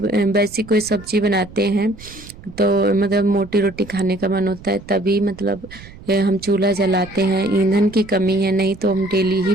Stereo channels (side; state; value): right; noise; rumble, 19 dB below the sound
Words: वैसी कोई सब्जी बनाते हैं तो मतलब मोटी रोटी खाने का मन होता है तभी मतलब हम चूल्हा जलाते हैं। ईंधन की कमी है, नहीं तो हम डेली ही